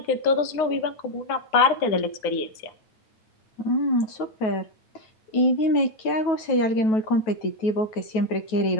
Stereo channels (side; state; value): right; late; 9.2 ms